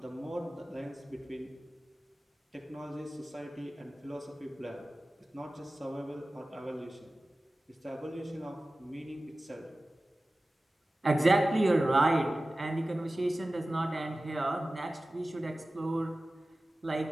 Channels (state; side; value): normal; both; correlation 0.96